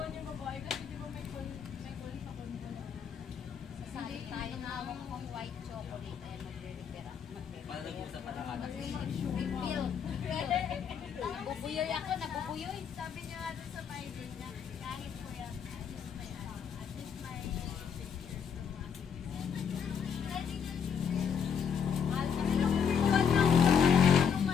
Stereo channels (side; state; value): right; quieter; 7.2 dB